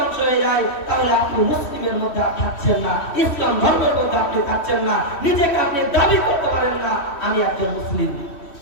হয়ে যায় তাহলে আপনি মুসলিমের মধ্যে থাকছেন না, ইসলাম ধর্মের মধ্যে আপনি থাকছেন না, নিজেকে আপনি দাবি করতে পারেন না আমি একজন মুসলিম।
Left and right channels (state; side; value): late; right; 3.1 ms